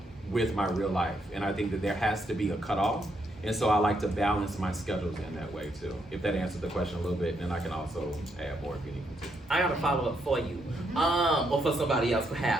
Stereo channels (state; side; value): normal; both; correlation 0.77